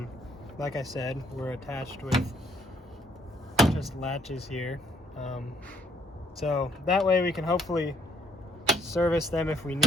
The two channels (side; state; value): both; normal; correlation 0.66